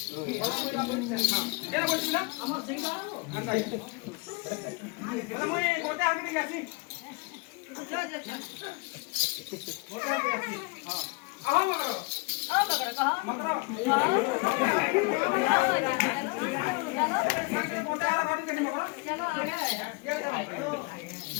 কেন বলছিলা আমার সিং বাবু আচ্ছা বলে মুই গতি আগে গেছি যা যা গতি আগে গেছি হ্যাঁ আও মগর কহ মগর चलो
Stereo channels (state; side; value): quieter; right; 28.6 dB